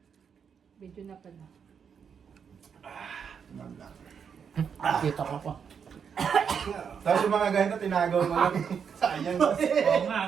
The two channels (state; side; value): quieter; left; 7.0 dB